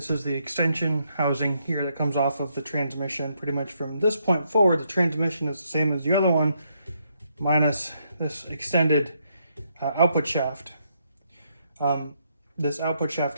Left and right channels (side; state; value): both; inverted; correlation -0.76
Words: is the extension housing here that comes off of the transmission. Pretty much from this point forward, the transmission is the same as the other one, minus this extended output shaft. This output